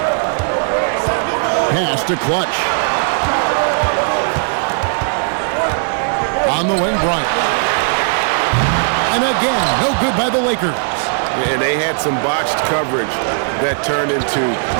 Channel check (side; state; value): left; silent; digital silence